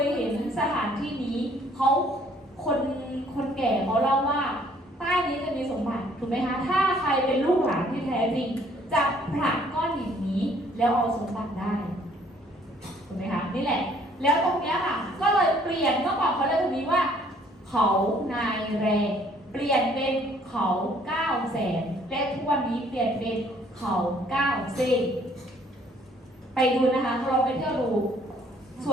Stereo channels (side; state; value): both; normal; correlation 0.61